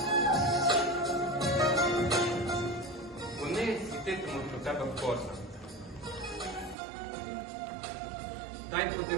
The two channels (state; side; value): drops out; left; at 6.8 s